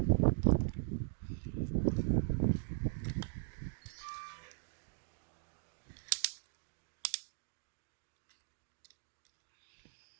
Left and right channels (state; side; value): silent; left; digital silence